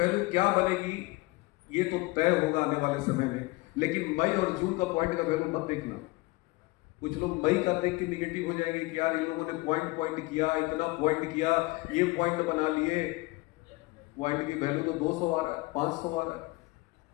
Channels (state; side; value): quieter; right; 23.2 dB